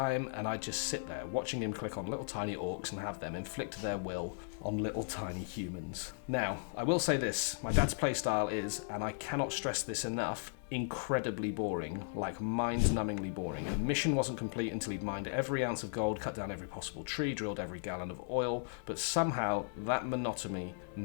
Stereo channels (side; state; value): right; silent; digital silence